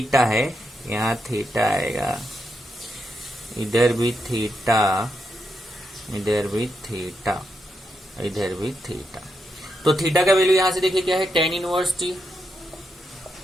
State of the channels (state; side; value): normal; both; correlation 0.83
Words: है, यहाँ थीटा आएगा, इधर भी थीटा, इधर भी थीटा, इधर भी थीटा। तो थीटा का वैल्यू यहां से देखिए क्या है, tan inverse t,